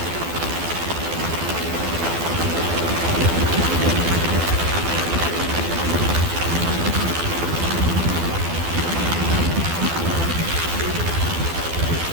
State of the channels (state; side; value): late; left; 12 ms